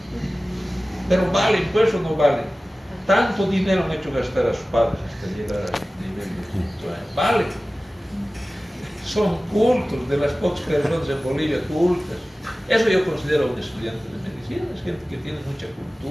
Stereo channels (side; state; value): both; normal; correlation 0.97